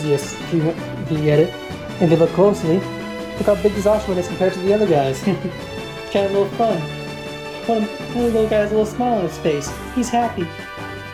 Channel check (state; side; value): identical; both; correlation 1.00